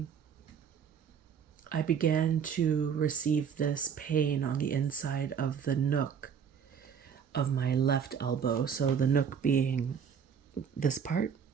I began to receive this pain on the inside of the nook of my left elbow. So the nook being this part.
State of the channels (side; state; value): left; quieter; 7.4 dB